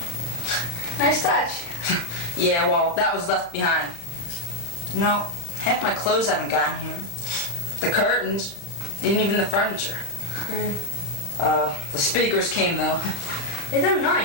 Nice touch. Yeah, well, that was left behind. No, half my clothes haven't gotten here. The curtains, even the furniture. The speakers came, though. Hey, they're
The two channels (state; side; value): late; right; 35 ms